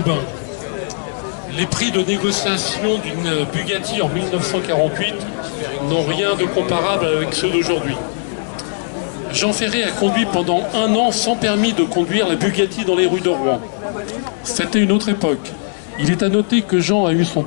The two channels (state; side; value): silent; right; digital silence